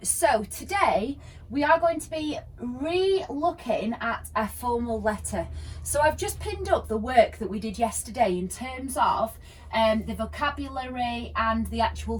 So today we are going to be re-looking at a formal letter. So I've just pinned up the work that we did yesterday in terms of the vocabulary and the actual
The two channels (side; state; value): both; identical; correlation 1.00